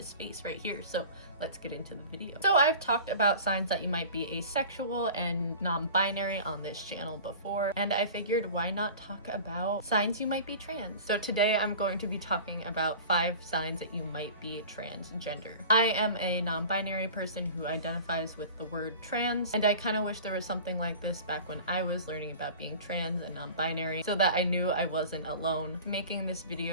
space right here. So let's get into the video. So I've talked about signs that you might be asexual and non-binary on this channel before, and I figured why not talk about signs you might be trans. So today I'm going to be talking about 5 signs that you might be transgender. I am a non-binary person who identifies with the word trans, and I kind of wish there was something like this back when I was learning about being trans and non-binary so that I knew I wasn't alone. Making this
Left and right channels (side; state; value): both; inverted; correlation -0.39